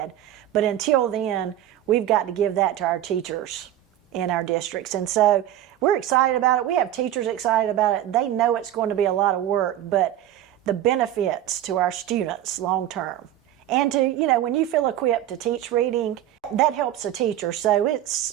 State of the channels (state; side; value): quieter; left; 12.2 dB